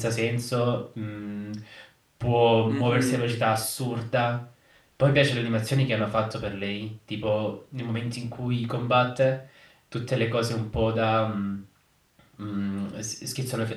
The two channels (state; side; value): identical; both; correlation 1.00